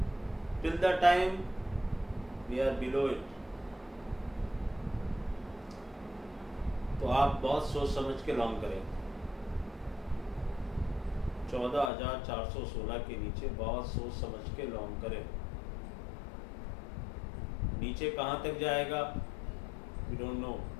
Till the time we are below it. तो आप बहुत सोच समझ के लॉन्ग करें। 14,416 के नीचे बहुत सोच समझ के लॉन्ग करें। नीचे कहाँ तक जाएगा वी डोंट नो,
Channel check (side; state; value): right; drops out; at 11.9 s